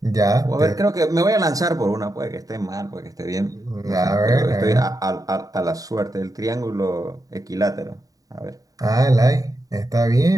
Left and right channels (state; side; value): late; left; 0.17 ms